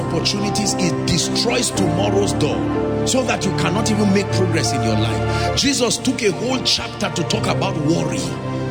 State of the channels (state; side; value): identical; both; correlation 1.00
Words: It destroys tomorrow's door, so that you cannot even make progress in your life. Jesus took a whole chapter to talk about worry.